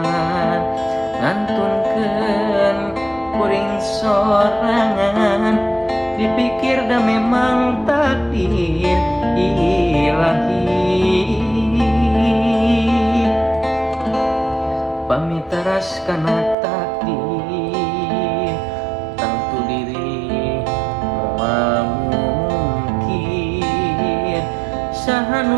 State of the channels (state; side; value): drops out; left; at 16.6 s